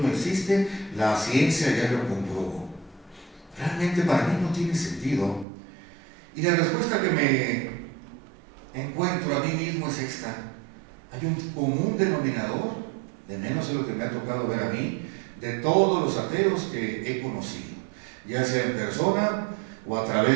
no existe, la ciencia ya lo comprobó. Realmente para mí no tiene sentido. Y la respuesta que me encuentro a mí mismo es esta: hay un común denominador, de menos de lo que me ha tocado ver a mí, de todos los ateos que he conocido, ya sea en persona o a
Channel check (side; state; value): left; drops out; at 5.5 s